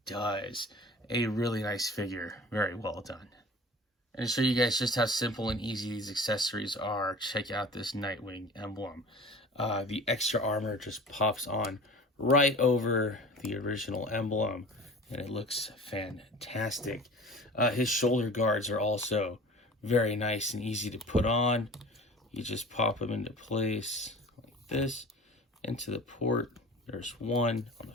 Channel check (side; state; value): both; normal; correlation 0.40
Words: does. A really nice figure, very well done. And to show you guys just how simple and easy these accessories are, check out this Nightwing emblem. The extra armor just pops on right over the original emblem, and it looks fantastic. His shoulder guards are also very nice and easy to put on. You just pop them into place like this, into the port. There's one on the